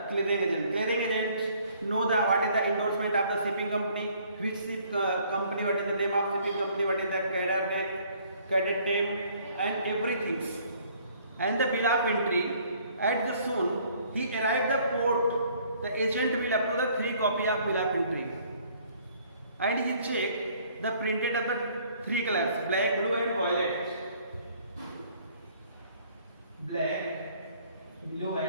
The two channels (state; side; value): inverted; both; correlation -0.60